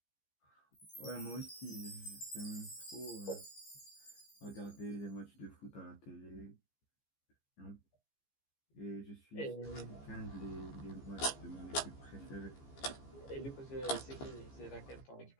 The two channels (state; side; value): late; right; 15 ms